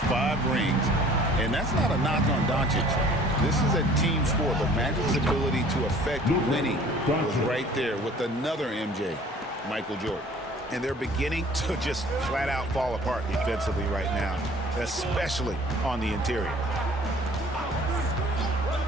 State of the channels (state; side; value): normal; both; correlation 0.51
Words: 5 rings, and that's not a knock on Doncic. This is a team sport, but Magic's ability to affect winning was right there with another MJ, Michael Jordan. And they're beginning to just flat out fall apart defensively right now, especially on the interior.